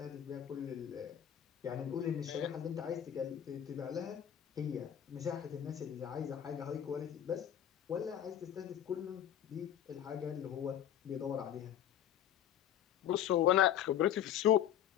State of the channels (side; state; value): right; quieter; 10.3 dB